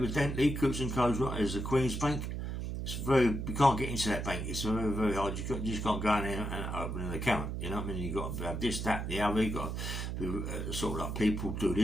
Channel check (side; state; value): right; noise; hum, 3 dB below the sound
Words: Coots & Co is the Queen's Bank. It's you can't get into that bank. It's very hard. You just can't go in there and open an account. You know what I mean? You've got to have this, that, the other. You've got to be, sort of like people do